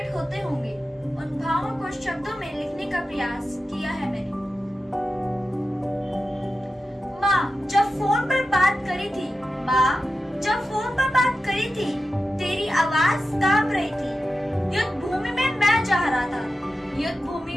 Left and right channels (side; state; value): both; normal; correlation 0.92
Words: होते होंगे। उन भावों को शब्दों में लिखने का प्रयास किया है मैंने। माँ जब फोन पर बात करी थी, माँ जब फोन पर बात करी थी, तेरी आवाज कांप रही थी। युद्ध भूमि में मैं जा रहा था, युद्ध